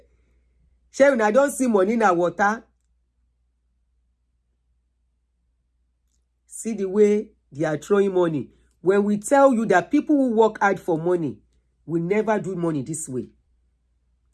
Sharon, I don't see money na water. See the way they are throwing money. When we tell you that people who work hard for money will never do money this way.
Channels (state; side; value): identical; both; correlation 1.00